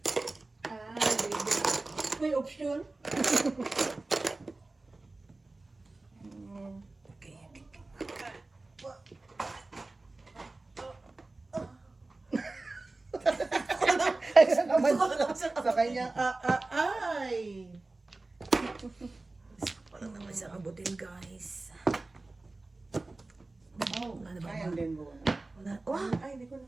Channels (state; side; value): quieter; left; 3.2 dB